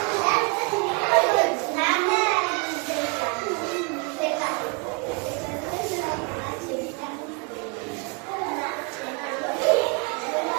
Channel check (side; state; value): left; quieter; 32.4 dB